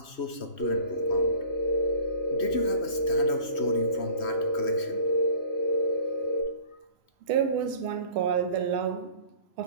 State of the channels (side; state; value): right; late; 3.1 ms